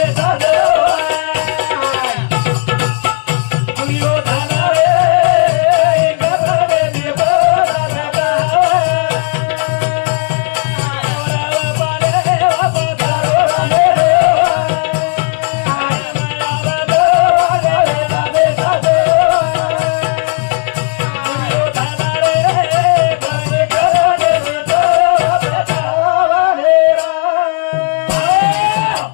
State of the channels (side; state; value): right; quieter; 38.2 dB